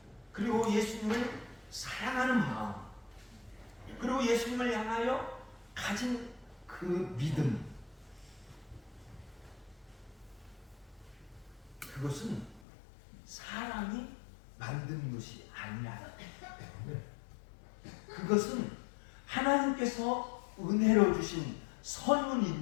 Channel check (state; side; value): drops out; right; at 12.6 s